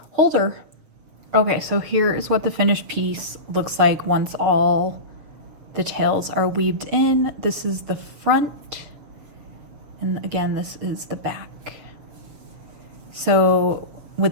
holder. Okay, so here is what the finished piece looks like once all the tails are weaved in. This is the front, and again, this is the back. So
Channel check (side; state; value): left; late; 7.0 ms